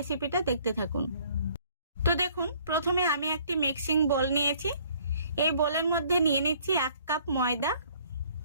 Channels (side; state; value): both; inverted; correlation -0.59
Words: দেখতে থাকুন। তো দেখুন প্রথমে আমি একটি মিক্সিং বোল নিয়েছি। এই বোলের মধ্যে নিয়ে নিচ্ছি 1 কাপ ময়দা।